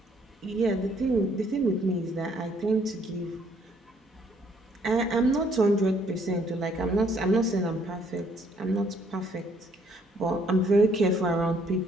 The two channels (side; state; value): both; normal; correlation 0.66